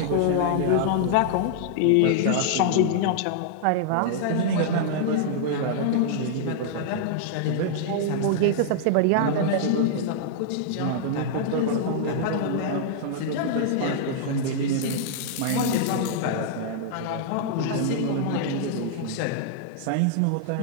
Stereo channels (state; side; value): different; both; correlation -0.01